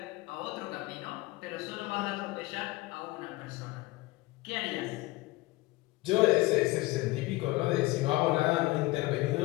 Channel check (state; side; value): quieter; right; 19.7 dB